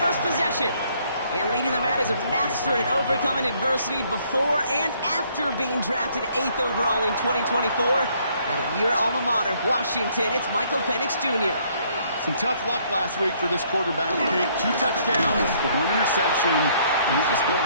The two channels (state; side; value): inverted; both; correlation -0.66